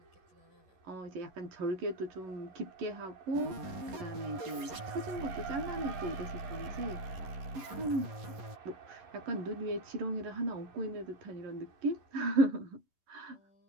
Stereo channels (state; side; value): late; left; 11 ms